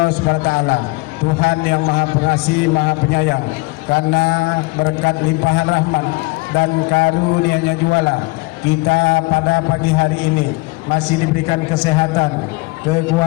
SWT, Tuhan yang Maha Pengasih, Maha Penyayang, karena berkat limpahan rahmat dan karunia-Nya juala kita pada pagi hari ini masih diberikan kesehatan,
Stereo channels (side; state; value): right; quieter; 25.1 dB